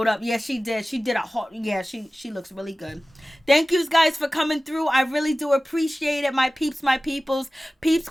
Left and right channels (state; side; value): normal; both; correlation 0.97